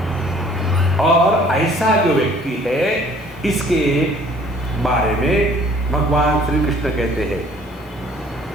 और ऐसा जो व्यक्ति है, इसके बारे में भगवान श्री कृष्ण कहते हैं,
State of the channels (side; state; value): both; normal; correlation 0.55